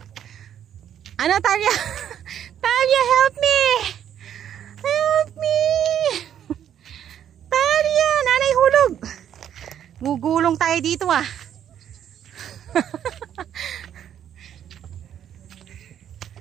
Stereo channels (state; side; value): quieter; left; 9.8 dB